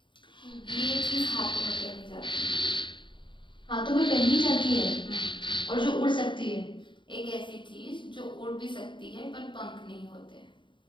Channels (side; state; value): right; late; 0.23 ms